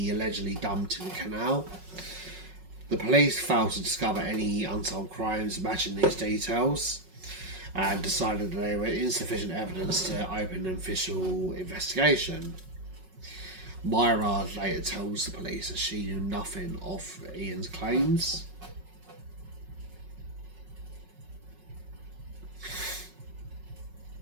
allegedly dumped in the canal. The police failed to discover any unsolved crimes matching these details, and decided that there were insufficient evidence to open an official investigation. Myra later tells the police that she knew nothing of Ian's claims.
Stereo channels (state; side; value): late; left; 5.4 ms